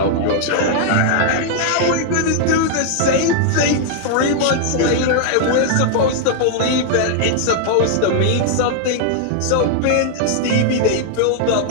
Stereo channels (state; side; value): different; both; correlation -0.01